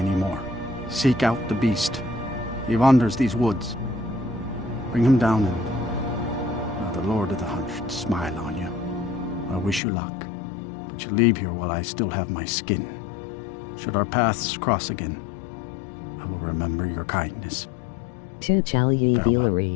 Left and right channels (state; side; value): drops out; right; at 9.8 s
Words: Seek out the beast. He wanders these woods. Bring him down and the Lord of the Hunt should smile on you. I wish you luck, but you leave here while I still have my skin. Should our paths cross again, I will remember your kindness. Tu Chalyi